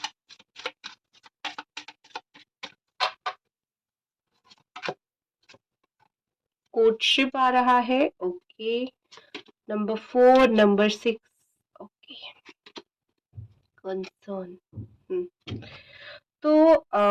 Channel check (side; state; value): both; identical; correlation 1.00